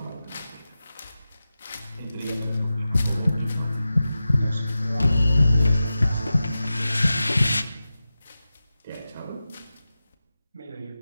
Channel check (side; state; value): both; inverted; correlation -0.94